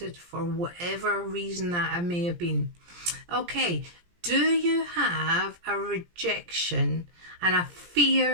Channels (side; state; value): left; late; 17 ms